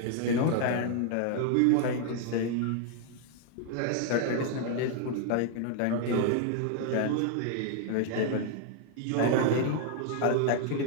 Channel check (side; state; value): both; different; correlation 0.00